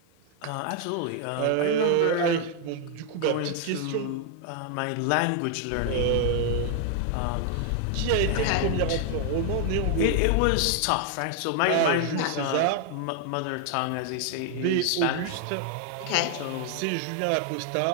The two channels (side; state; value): both; different; correlation 0.00